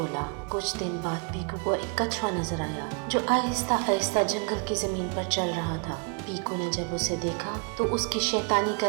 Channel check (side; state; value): left; quieter; 35.6 dB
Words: कुछ दिन बाद पीकू को एक कछुआ नजर आया जो आहिस्ता आहिस्ता जंगल की जमीन पर चल रहा था। पीकू ने जब उसे देखा तो उसकी शैतानी